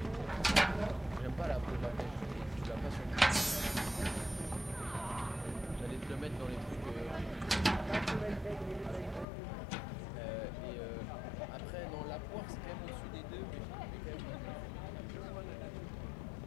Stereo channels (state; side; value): drops out; right; at 9.2 s